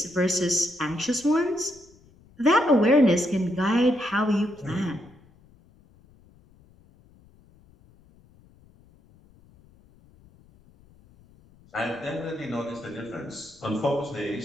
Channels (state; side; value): noise; left; rumble, 28 dB below the sound